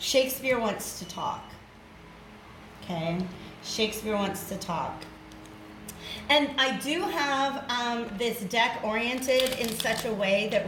wants to talk. Okay? Shakespeare wants to talk. And I do have this deck oriented in such a way that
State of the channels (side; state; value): both; identical; correlation 1.00